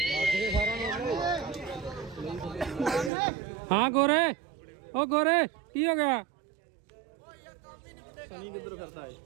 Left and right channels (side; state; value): left; drops out; at 3.1 s